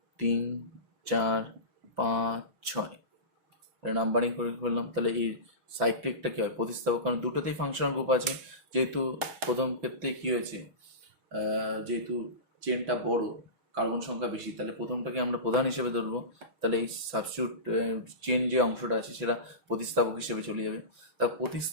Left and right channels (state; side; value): late; left; 6.0 ms